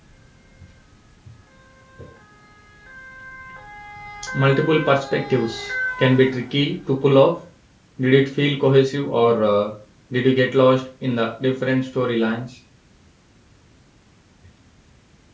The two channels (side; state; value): both; identical; correlation 1.00